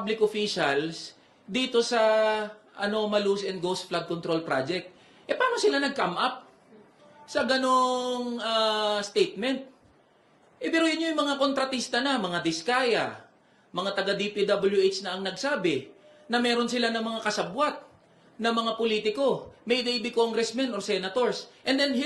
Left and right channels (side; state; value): both; identical; correlation 1.00